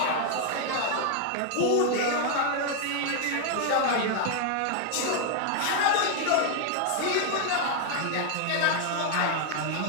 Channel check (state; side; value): different; both; correlation 0.00